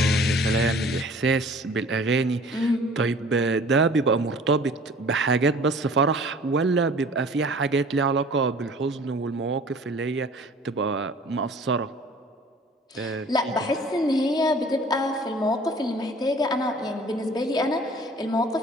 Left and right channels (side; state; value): both; normal; correlation 0.48